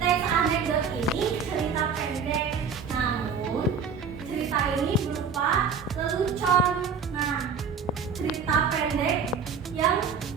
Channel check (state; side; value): quieter; left; 6.0 dB